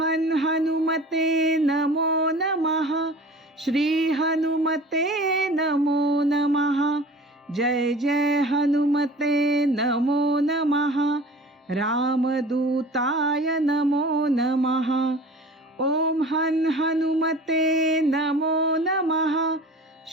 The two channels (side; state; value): both; normal; correlation 0.42